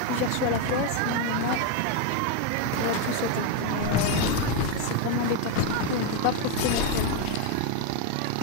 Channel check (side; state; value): both; different; correlation 0.02